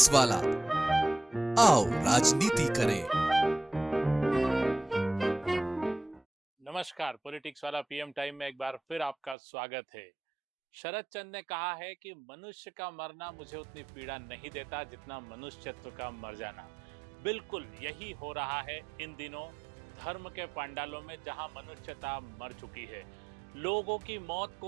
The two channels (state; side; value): drops out; left; at 9.3 s